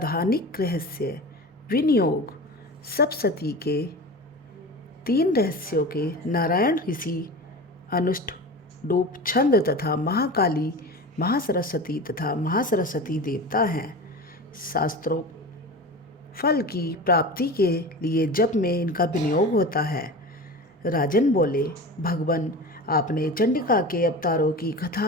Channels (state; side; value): normal; both; correlation 0.31